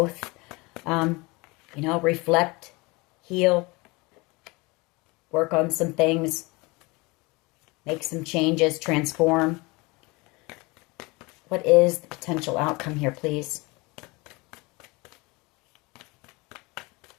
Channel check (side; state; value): right; quieter; 25.2 dB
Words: you know, reflect, heal, work on some things, make some changes, transform. What is the potential outcome here, please?